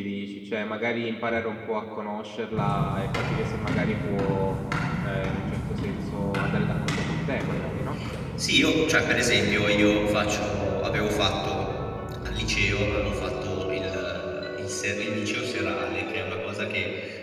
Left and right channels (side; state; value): both; identical; correlation 1.00